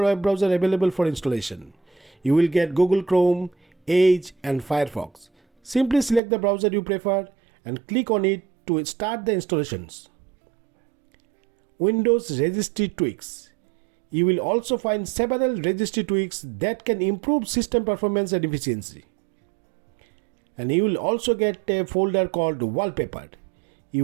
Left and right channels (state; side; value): drops out; left; at 6.2 s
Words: web browsers available for installation. You will get Google Chrome, Edge and Firefox. Simply select the browser you prefer and click on it to start the installations. Windows registry tweaks. You will also find several registry tweaks that can improve system performance and efficiency. And you will also get a folder called wallpaper. You